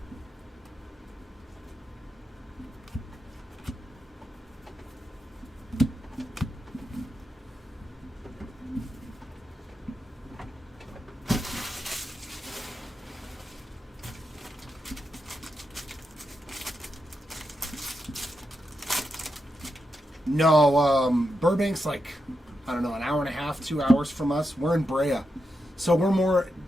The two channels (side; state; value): both; normal; correlation 0.86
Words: No, Burbank's like, I don't know, an hour and a half, 2 hours from us. We're in Brea. So we're more